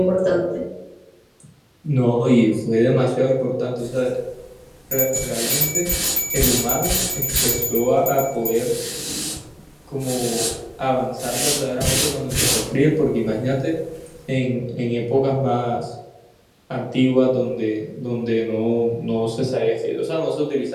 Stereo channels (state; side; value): identical; both; correlation 1.00